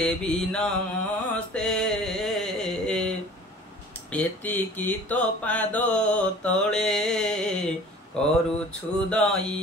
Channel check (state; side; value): normal; both; correlation 0.46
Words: নমস্তে এতিকি তো পাদ তଳେ କରୁଛୁ